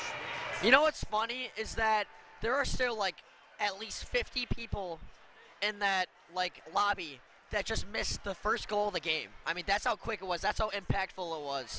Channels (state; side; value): identical; both; correlation 1.00